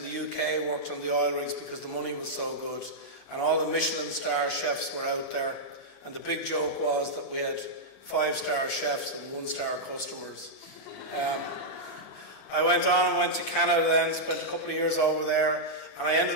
UK worked on the oil rigs because the money was so good. And all the Michelin star chefs were out there. And the big joke was that we had 5-star chefs and 1-star customers. I went on and went to Canada then, spent a couple of years over there. And I ended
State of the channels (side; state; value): right; late; 37 ms